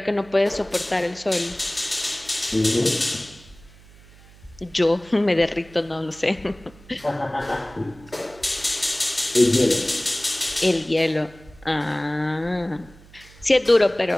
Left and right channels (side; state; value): right; noise; hum, 23 dB below the sound